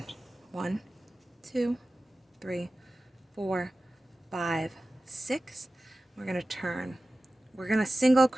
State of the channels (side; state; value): both; normal; correlation 0.95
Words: 1, 2, 3, 4, 5, 6. We're going to turn. We're going to single